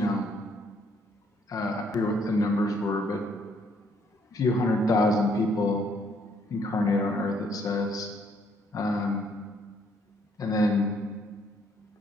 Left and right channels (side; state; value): both; normal; correlation 0.68